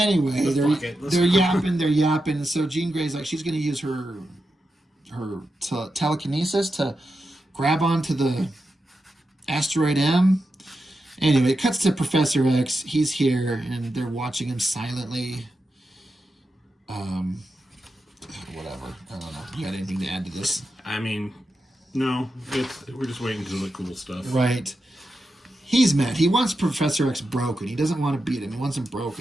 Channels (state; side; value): normal; both; correlation 0.89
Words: they're yapping. So Jean Grey's like, she's going to use her telekinesis to grab onto the asteroid M. Anyway, it cuts to Professor X. He's here, and they're watching him silently. Whatever. I don't know. You got anything to add to this? I mean, no. We're just waiting for the cool stuff. Right. He's mad. He wants Professor X broken. He doesn't want to beat him. He wants him